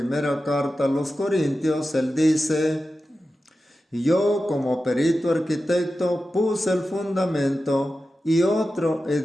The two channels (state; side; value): normal; both; correlation 0.93